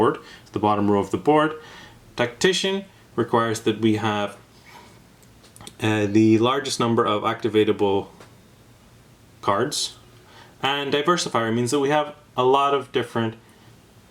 the bottom row of the board. Tactician requires that we have the largest number of activatable cards. And Diversifier means that we have a lot of different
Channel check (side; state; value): both; identical; correlation 1.00